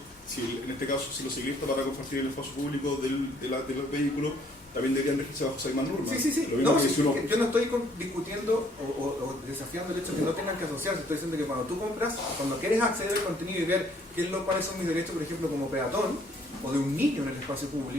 en este caso, si los ciclistas para compartir el espacio público de los vehículos, también deberían regirse bajo esas mismas normas. Sí. Yo no estoy discutiendo o desafiando el hecho de que no tengan que asociarse. Estoy diciendo que cuando tú compras, cuando quieres acceder al contenido y ver cuáles son mis derechos, por ejemplo, como peatón, o de un niño en el espacio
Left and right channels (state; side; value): normal; both; correlation 0.63